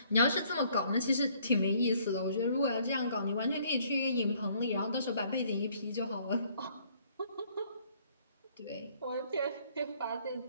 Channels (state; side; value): inverted; both; correlation -0.63